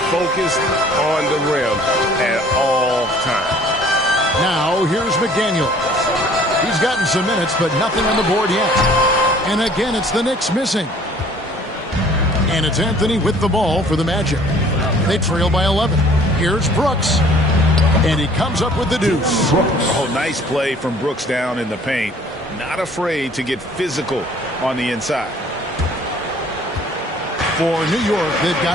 focused on the rim at all times. Now, here's McDaniels. He's gotten some minutes, but nothing on the board yet. And again, it's the Knicks missing. And it's Anthony with the ball for the Magic. They trail by 11. Here's Brooks. And he comes up with the deuce. Oh, nice play from Brooks down in the paint. Not afraid to get physical on the inside. For New York, they've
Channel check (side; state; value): both; normal; correlation 0.54